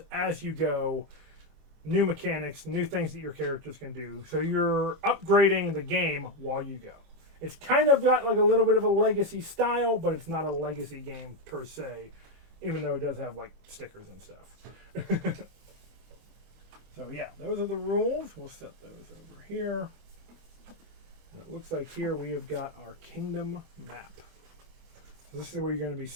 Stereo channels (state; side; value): late; left; 25 ms